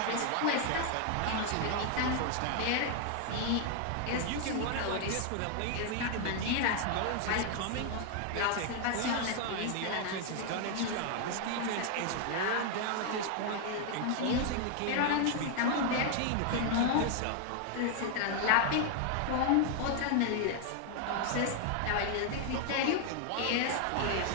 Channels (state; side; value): different; both; correlation 0.00